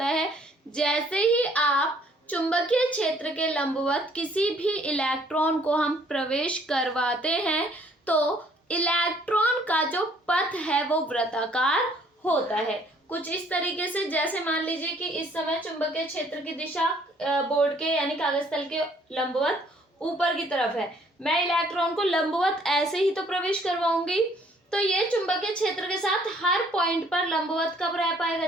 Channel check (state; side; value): normal; both; correlation 0.61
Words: है। जैसे ही आप चुंबकीय क्षेत्र के लंबवत किसी भी इलेक्ट्रॉन को हम प्रवेश करवाते हैं तो इलेक्ट्रॉन का जो पथ है वो वृत्ताकार होता है, कुछ इस तरीके से। जैसे मान लीजिए कि इस समय चुंबकीय क्षेत्र की दिशा बोर्ड के यानी कागज तल के लंबवत ऊपर की तरफ है, मैं इलेक्ट्रॉन को लंबवत ऐसे ही तो प्रवेश करवाऊंगी, तो ये चुंबकीय क्षेत्र के साथ हर पॉइंट पर लंबवत कब रह पाएगा?